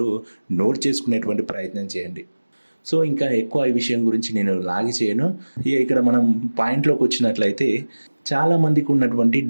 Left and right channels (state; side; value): inverted; both; correlation -1.00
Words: నోట్ చేసుకునేటువంటి ప్రయత్నం చేయండి. సో ఇంకా ఎక్కువ ఈ విషయం గురించి నేను లాగి చేయను. ఇక్కడ మనం పాయింట్లోకి వచ్చినట్లయితే చాలామందికి ఉన్నటువంటి